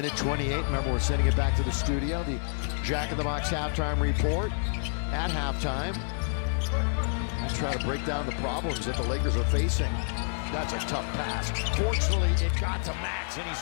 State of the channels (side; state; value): right; silent; digital silence